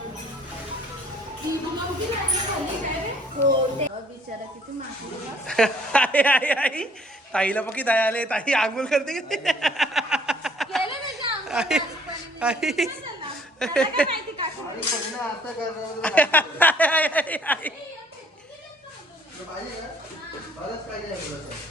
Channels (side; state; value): both; normal; correlation 0.60